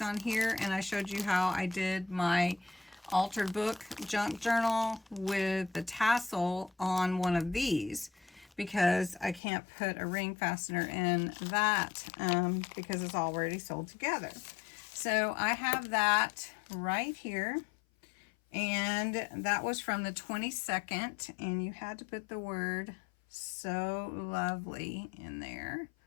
on here, and I showed you how I did my altered book junk journal with the tassel on one of these, because I can't put a ring fastener in that because it's already sold together. So I have that right here, and that was from the 22nd, and you had to put the word So Lovely in there.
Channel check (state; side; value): drops out; right; at 9.4 s